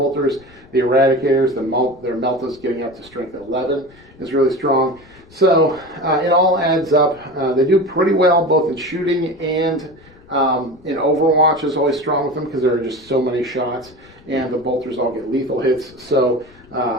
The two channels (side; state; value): left; noise; rumble, 26 dB below the sound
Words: The eradicators, their meltas getting up to strength 11 is really strong. So it all adds up. They do pretty well both in shooting and in Overwatch is always strong with them because there are just so many shots, and the bolters all get lethal hits. So